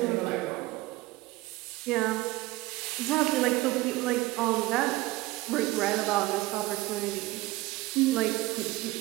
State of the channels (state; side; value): quieter; left; 19.2 dB